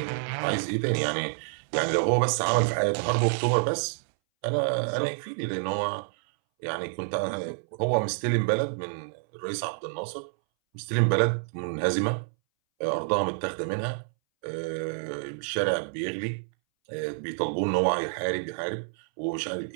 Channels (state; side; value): silent; left; 59 dB below the other